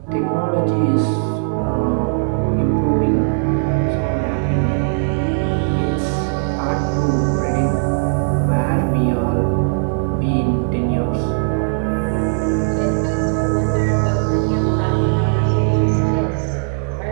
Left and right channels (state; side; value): silent; left; digital silence